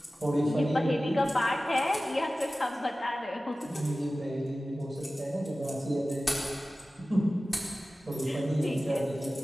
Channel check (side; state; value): both; normal; correlation 0.96